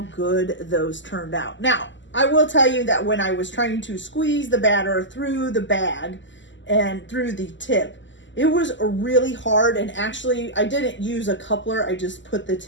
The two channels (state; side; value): late; right; 0.54 ms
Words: good those turned out. Now, I will tell you that when I was trying to squeeze the batter through the bag and through the tip, it was really hard, and actually I didn't use a coupler. I just put the